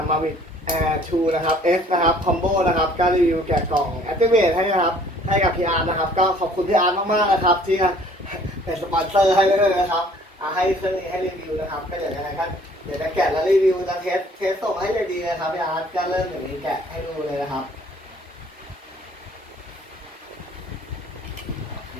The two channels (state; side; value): normal; both; correlation 0.56